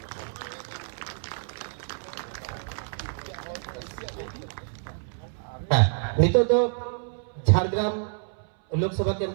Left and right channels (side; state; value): left; silent; 59 dB below the other